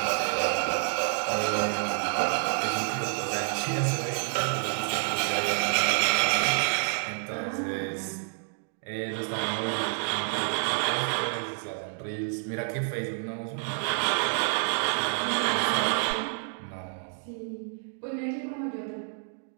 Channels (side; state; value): left; silent; 59 dB below the other